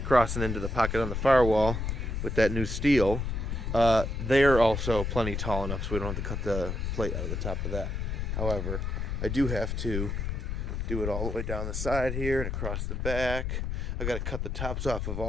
and into the pocket on the firewall with that new steel, they're also plenty tall enough so we don't have to cut the plate out of the top of that. However, I do have to do it all the way down the side here and across the back. I got to cut the tops off of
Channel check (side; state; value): left; noise; rumble, 2 dB below the sound